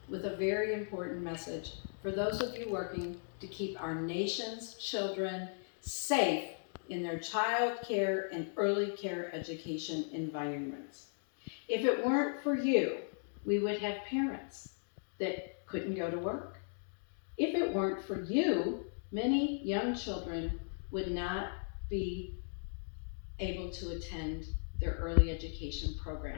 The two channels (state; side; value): silent; right; digital silence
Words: with a very important message for those of you working to keep our nation's children safe in their child care and early care education environments. If it weren't for you, we would have parents that couldn't go to work. If it weren't for you, many young children would not be able to attend their early education